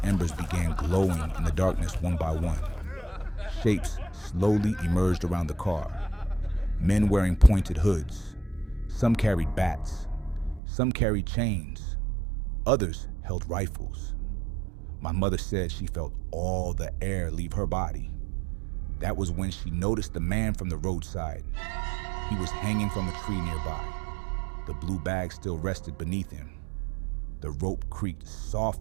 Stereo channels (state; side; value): drops out; left; at 10.6 s